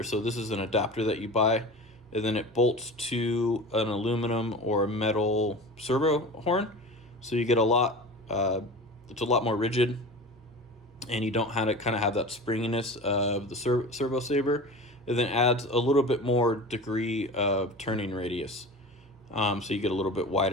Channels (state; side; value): normal; both; correlation 0.34